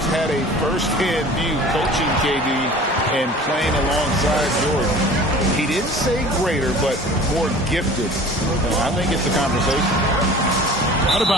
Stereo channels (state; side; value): normal; both; correlation 0.43